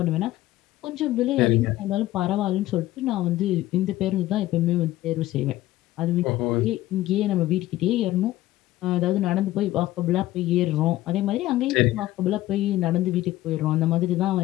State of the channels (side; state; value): right; quieter; 15.8 dB